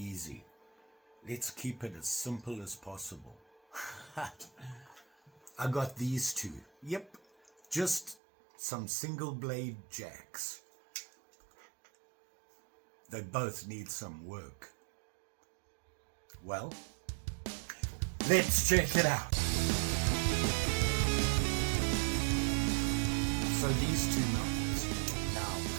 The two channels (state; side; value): drops out; left; at 8.2 s